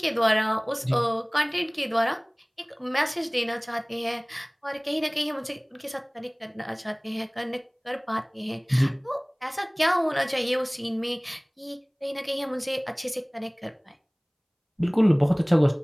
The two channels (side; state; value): both; identical; correlation 1.00